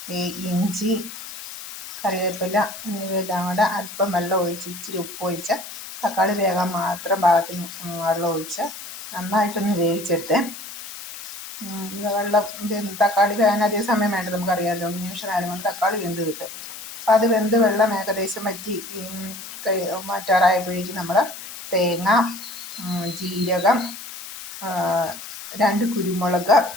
ഇഞ്ചി, കറിവേപ്പില എന്നിവയെല്ലാം കൂടെ അല്പം വെള്ളം ഒഴിച്ച് ഇച്ചിരി ഉപ്പ് ഒഴിച്ച് തക്കാളി വേകാൻ മാത്രം പാകത്തിന് വെള്ളം ഒഴിച്ച് നന്നായിട്ടൊന്ന് വേവിച്ചെടുത്ത്. തക്കാളി വേകാൻ അധികം സമയം വേണ്ട, നമുക്കറിയാമല്ലോ. നിമിഷം നേരം കൊണ്ട് തക്കാളി വെന്ത് കിട്ടും. അപ്പം അത് വെന്ത് വെള്ളം ഏകദേശം വറ്റി മാറ്റാറായപ്പോഴേക്കും നമ്മൾ തേങ്ങ, ജീരകം, 2 കുരുമുളക്,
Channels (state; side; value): noise; left; hiss, 11 dB below the sound